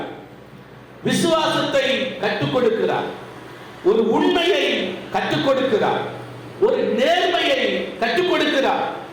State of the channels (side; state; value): both; identical; correlation 1.00